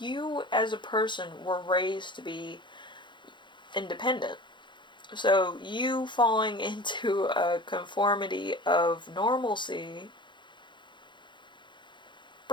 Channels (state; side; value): late; right; 0.23 ms